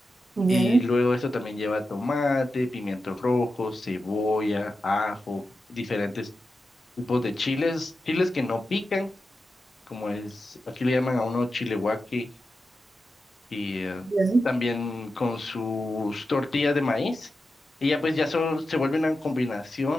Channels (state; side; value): normal; both; correlation 0.91